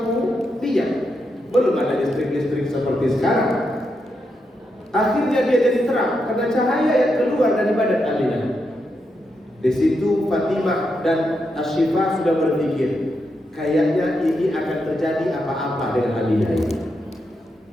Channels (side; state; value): both; normal; correlation 0.84